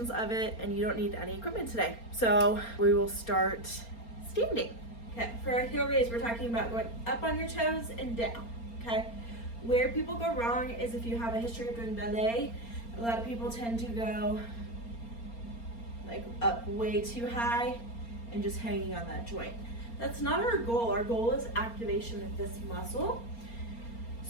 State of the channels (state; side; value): late; right; 4.3 ms